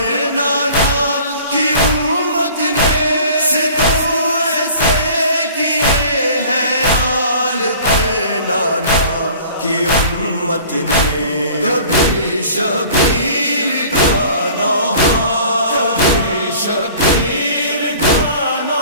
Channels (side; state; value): both; inverted; correlation -0.47